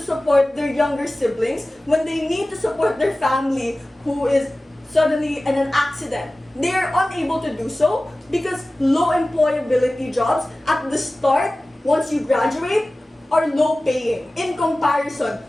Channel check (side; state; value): both; normal; correlation 0.97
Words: their younger siblings, when they need to support their family who is suddenly in an accident, they are unable to do so because low employability jobs at the start, once you graduate, are low paying in comparison